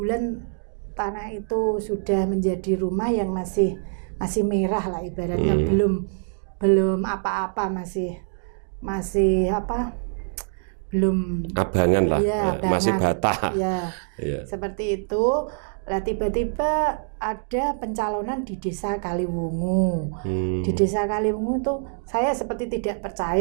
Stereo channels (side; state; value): left; silent; digital silence